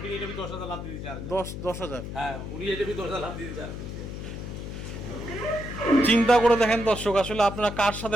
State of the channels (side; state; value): left; noise; hum, 7 dB below the sound